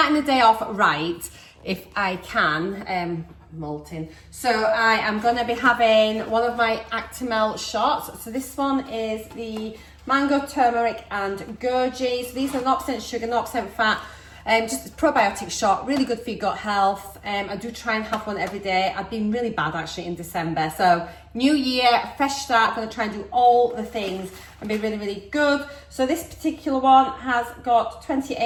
the day off right, if I can, molting. So I am going to be having one of my Actimel shots. So this one is the mango, turmeric and goji. So these are 0% sugar, 0% fat, just a probiotic shot, really good for your gut health. I do try and have one every day. I've been really bad actually in December. So new year, fresh start, gonna try and do all the things and be really, really good. So this particular one has got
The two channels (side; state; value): both; identical; correlation 1.00